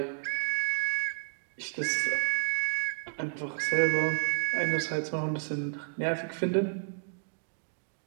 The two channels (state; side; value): silent; left; digital silence